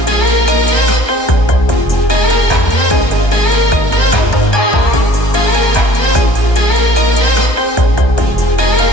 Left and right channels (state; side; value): late; right; 1.2 ms